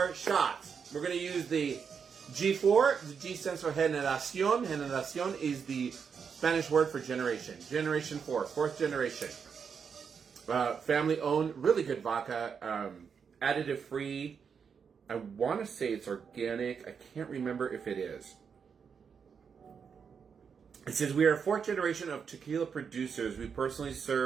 shots. We're going to use the G4. The G stands for generación. Generación is the Spanish word for generation. Generation 4, fourth generation. Family owned, really good vodka. Additive free. I want to say it's organic. I can't remember if it is. It says we are a fourth generation of tequila producers. We personally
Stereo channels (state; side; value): quieter; left; 6.5 dB